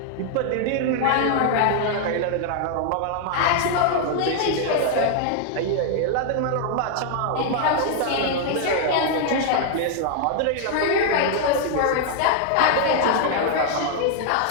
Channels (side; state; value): both; different; correlation 0.00